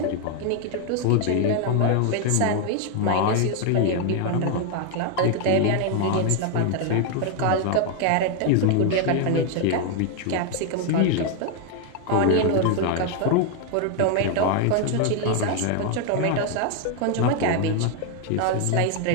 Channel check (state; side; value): different; both; correlation 0.01